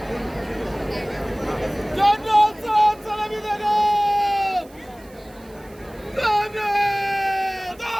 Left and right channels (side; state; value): right; noise; hiss, 27 dB below the sound